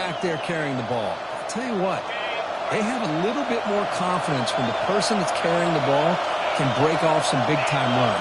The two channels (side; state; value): both; identical; correlation 1.00